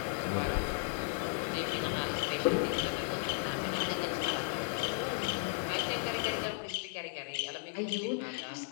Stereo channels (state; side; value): silent; right; 54 dB below the other